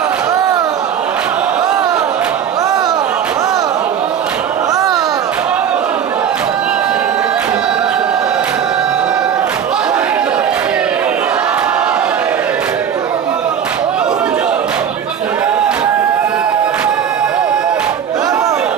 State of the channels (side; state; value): left; quieter; 8.4 dB